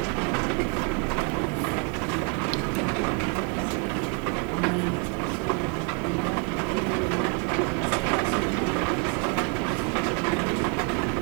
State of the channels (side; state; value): left; quieter; 33.8 dB